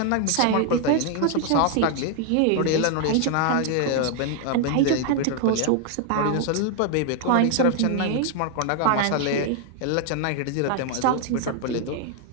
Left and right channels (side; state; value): both; different; correlation 0.00